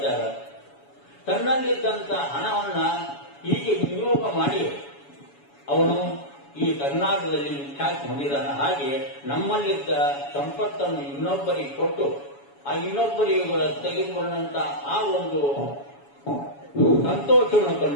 ಇದ್ದಾರೆ. ತನ್ನಲ್ಲಿದ್ದಂತ ಹಣವನ್ನ ಹೀಗೆ ವಿನಿಯೋಗ ಮಾಡಿ ಅವನು ಈ ಕರ್ನಾಟಕದಲ್ಲಿ ವಿಖ್ಯಾತಿ ಹೊಂದಿದ್ದಾನೆ. ಹಾಗೆ ನಮ್ಮಲ್ಲಿದ್ದ ಸಂಪತ್ತನ್ನು ಇನ್ನೊಬ್ಬರಿಗೆ ಕೊಟ್ಟು ಆ ಇನ್ನೊಬ್ಬರಿಗೆ ತೆಗೆದುಕೊಂಡಂತ ಆ ಒಂದು ಸಂತೋಷವನ್ನು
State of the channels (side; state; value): right; late; 7.1 ms